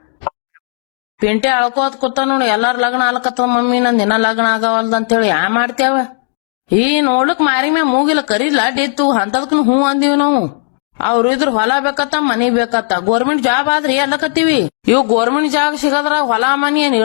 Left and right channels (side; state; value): right; silent; digital silence